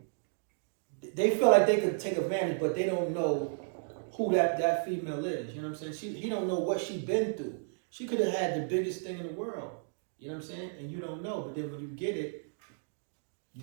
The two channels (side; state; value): left; silent; digital silence